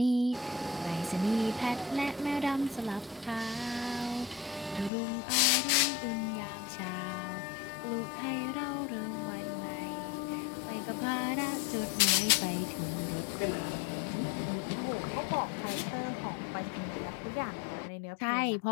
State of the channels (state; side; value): drops out; right; at 4.9 s